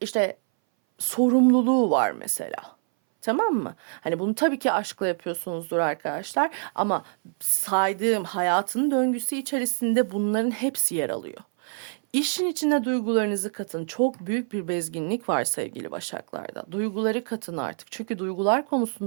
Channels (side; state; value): left; silent; 59 dB below the other